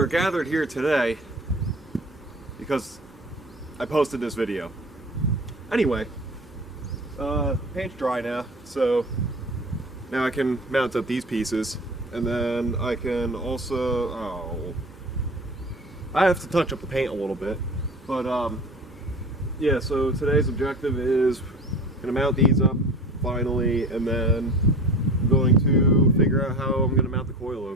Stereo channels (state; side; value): normal; both; correlation 0.38